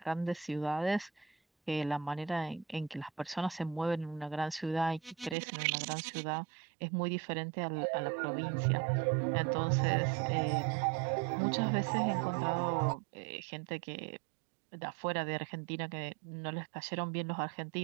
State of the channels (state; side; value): drops out; left; at 5.4 s